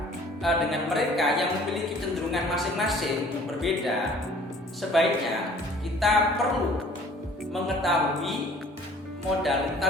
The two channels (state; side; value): normal; both; correlation 0.52